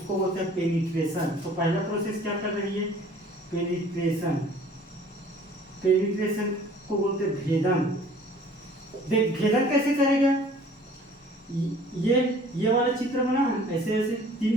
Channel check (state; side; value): normal; both; correlation 0.51